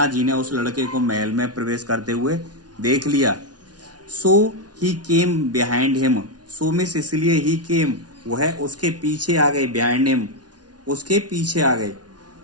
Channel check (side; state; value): left; late; 0.69 ms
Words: ने उस लड़के को महल में प्रवेश करते हुए देख लिया। सो ही केम बिहाइंड हिम। सो मिस इसलिए, ही केम वह उसके पीछे आ गए, बिहाइंड हिम उसके पीछे आ गए।